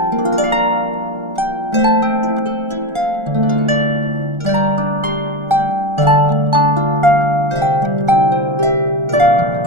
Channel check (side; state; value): left; late; 1.4 ms